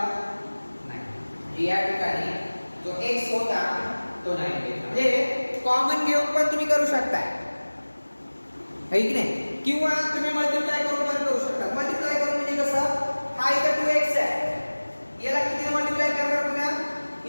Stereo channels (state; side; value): inverted; both; correlation -1.00